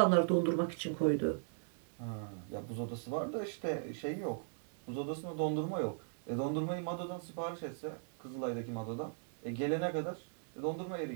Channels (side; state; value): left; silent; digital silence